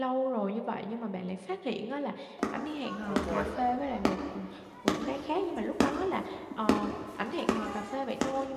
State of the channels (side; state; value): both; identical; correlation 1.00